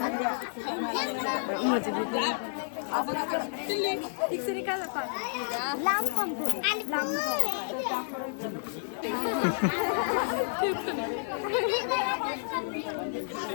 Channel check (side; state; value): right; silent; digital silence